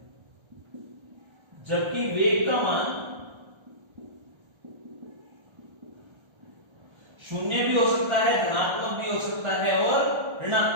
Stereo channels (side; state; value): left; late; 1.3 ms